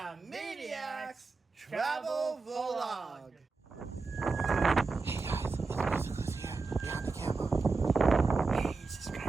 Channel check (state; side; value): quieter; left; 4.1 dB